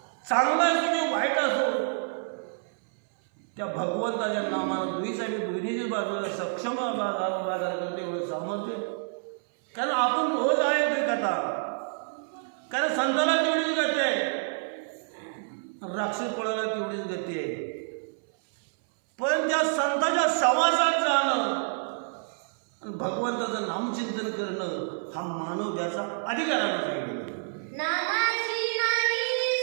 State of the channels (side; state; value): left; silent; 59 dB below the other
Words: चांगला असो किंवा वाईट असो, त्या भगवंताच्या नामाला दुहीची बाजूला सक्षम बाजार करते एवढं सामर्थ्य. कारण आपण रोज आहे कथा. कारण संताला तेवढीच गती आहे, राक्षस पळायला तेवढीच गती आहे. पण त्या संताच्या सहवासात जाणं आणि भगवंताचं नामचिंतन करणं हा मानव त्याचा अधिकारानं सांगितलं. नामासी नाही